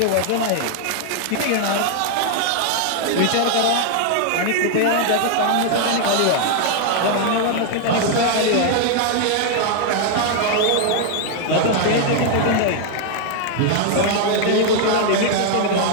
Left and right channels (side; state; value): both; different; correlation 0.00